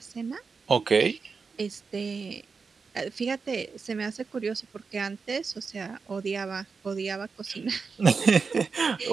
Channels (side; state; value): left; quieter; 5.0 dB